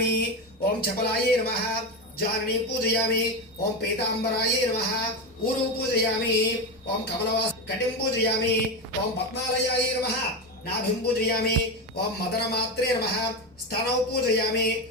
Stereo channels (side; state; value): both; normal; correlation 0.16